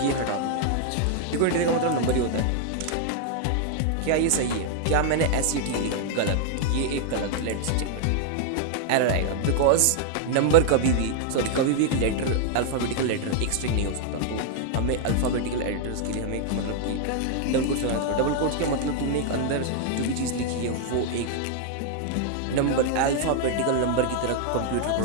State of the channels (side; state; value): both; different; correlation 0.00